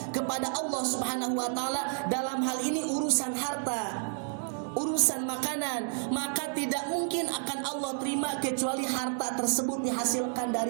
kepada Allah Subhanahu wa taala, dalam hal ini urusan harta, urusan makanan, maka tidak mungkin akan Allah terima kecuali harta tersebut dihasilkan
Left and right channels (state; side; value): silent; left; digital silence